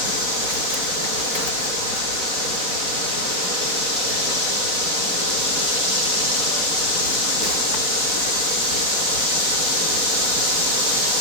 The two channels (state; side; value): late; left; 4.5 ms